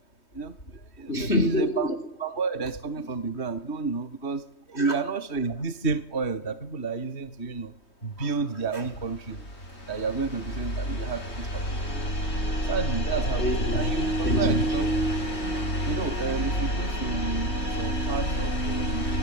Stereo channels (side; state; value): right; late; 3.2 ms